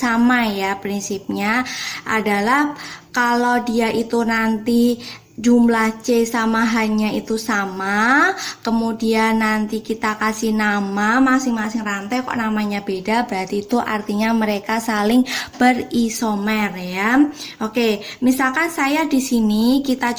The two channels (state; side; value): identical; both; correlation 1.00